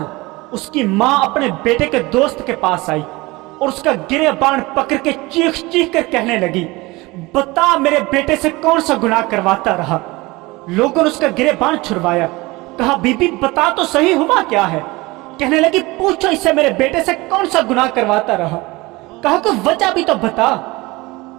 اس کی ماں اپنے بیٹے کے دوست کے پاس آئی اور اس کا گریبان پکڑ کے چیخ چیخ کر کہنے لگی، بتا میرے بیٹے سے کون سا گناہ کرواتا رہا۔ لوگوں نے اس کا گریبان چھڑوایا، کہا بی بی بتا تو صحیح ہوا کیا ہے۔ کہنے لگی پوچھو اس سے میرے بیٹے سے کون سا گناہ کرواتا رہا۔ کہا کہ وجہ بھی تو بتا۔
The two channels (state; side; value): quieter; left; 22.2 dB